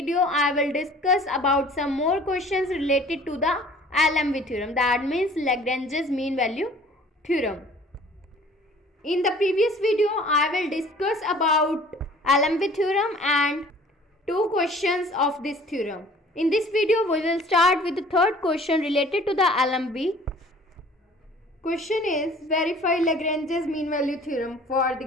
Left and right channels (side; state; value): both; normal; correlation 0.50